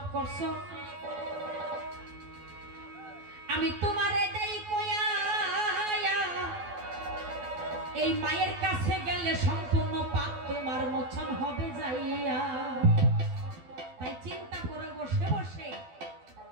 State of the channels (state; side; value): late; left; 12 ms